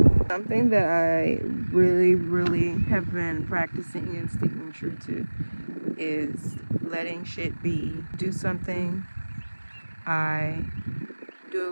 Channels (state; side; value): inverted; both; correlation -1.00